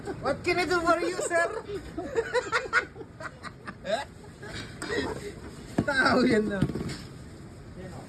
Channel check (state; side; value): identical; both; correlation 1.00